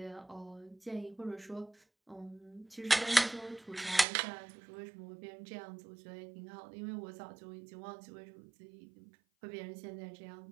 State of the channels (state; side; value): drops out; left; at 4.0 s